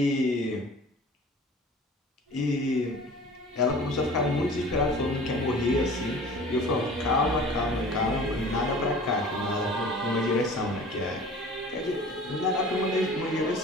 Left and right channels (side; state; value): both; normal; correlation 0.43